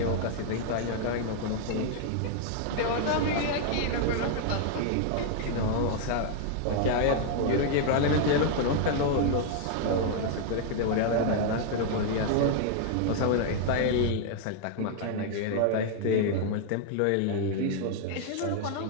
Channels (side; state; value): both; different; correlation 0.00